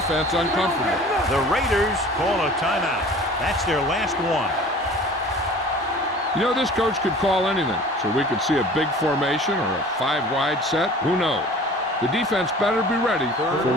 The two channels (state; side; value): normal; both; correlation 0.44